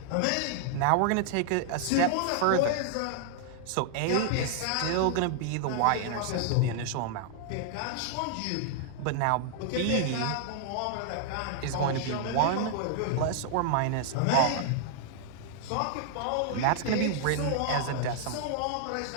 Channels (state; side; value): different; both; correlation -0.01